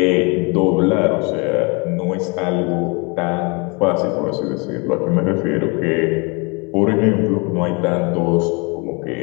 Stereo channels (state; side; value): quieter; right; 30.5 dB